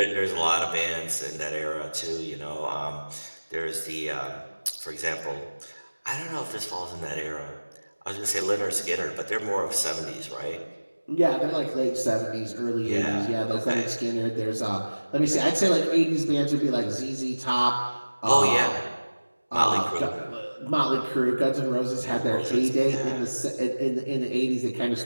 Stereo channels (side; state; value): both; inverted; correlation -1.00